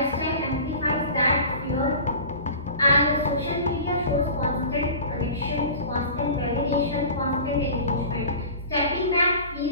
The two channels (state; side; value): inverted; both; correlation -0.38